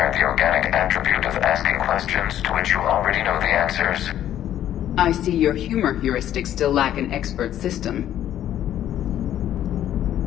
the organic attribute of asking questions to which you already know the answers. I see your humor heuristics still lack an expert system.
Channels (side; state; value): right; quieter; 11.5 dB